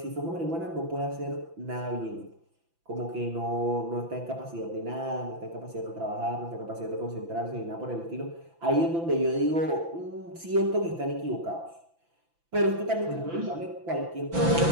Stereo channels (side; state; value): left; late; 5.9 ms